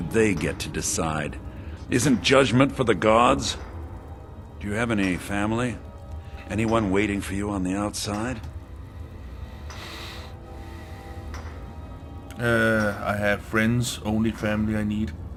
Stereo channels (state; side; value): identical; both; correlation 1.00